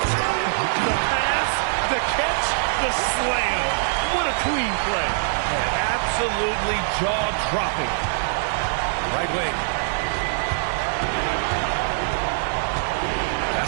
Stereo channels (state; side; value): silent; left; digital silence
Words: The pass, the catch, the slam. What a clean play. Absolutely jaw-dropping. Right wing. Pass